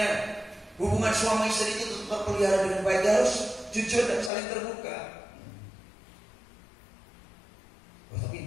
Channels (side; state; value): right; drops out; at 4.3 s